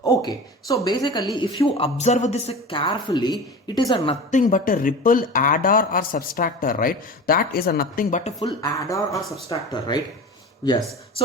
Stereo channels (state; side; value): normal; both; correlation 0.33